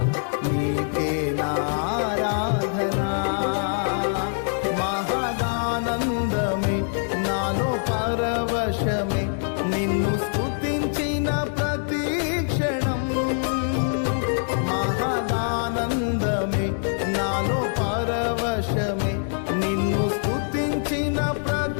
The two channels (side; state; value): right; silent; 62 dB below the other